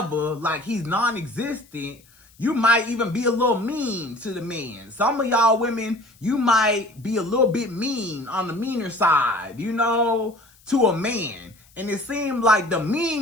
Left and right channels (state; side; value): noise; left; hiss, 29 dB below the sound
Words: like he's non-existent, you might even be a little mean to the man. Some of y'all women, you might be a little bit mean on the meaner side, to a man. And it seems like the